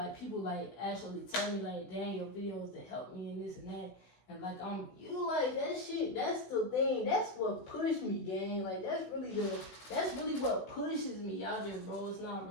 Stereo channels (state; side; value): late; right; 16 ms